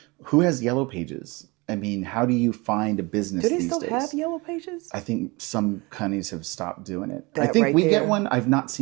who has yellow pages. I mean, how do you find a business these days? Do they still have yellow pages? I think some companies have stopped doing it. I think we get one. I've not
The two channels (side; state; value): left; quieter; 25.5 dB